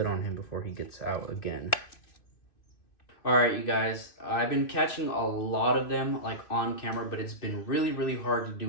on him before he gets out again. All right, you guys, I've been catching a lot of them like on camera, but it's been really, really hard to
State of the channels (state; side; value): late; right; 2.6 ms